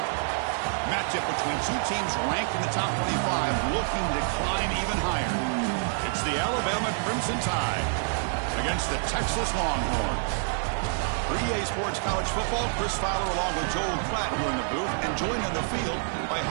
Matchup between two teams ranked in the top 25, looking to climb even higher. It's the Alabama Crimson Tide against the Texas Longhorns. For EA Sports College Football, Chris Fowler along with Joel Klatt here in the booth, and joined on the field by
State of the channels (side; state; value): left; silent; 60 dB below the other